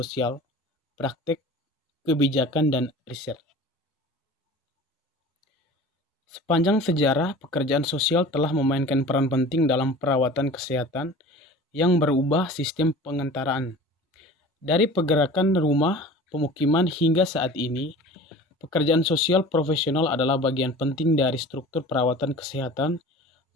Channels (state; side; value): normal; both; correlation 0.40